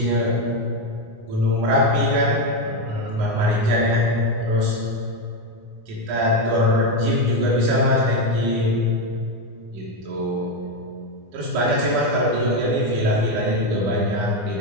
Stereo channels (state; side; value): late; left; 9.7 ms